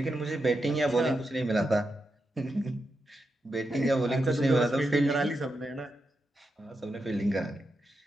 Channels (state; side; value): normal; both; correlation 0.86